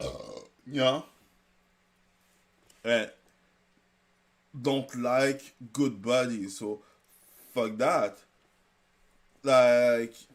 don't like good buddies, so fuck that. Like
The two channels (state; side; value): identical; both; correlation 1.00